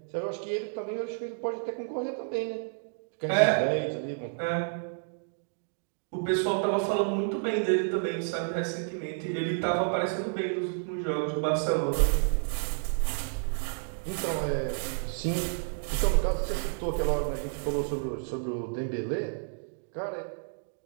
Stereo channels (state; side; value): silent; left; digital silence